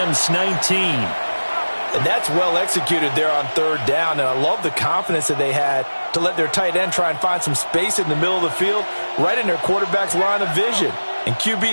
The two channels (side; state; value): both; inverted; correlation -1.00